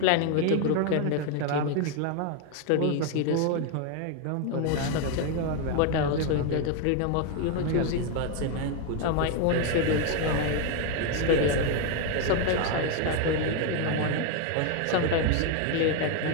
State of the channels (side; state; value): both; different; correlation 0.01